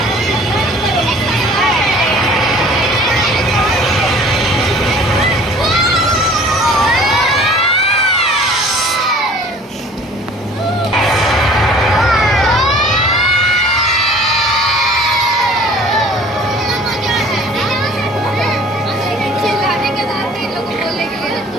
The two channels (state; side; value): normal; both; correlation 0.49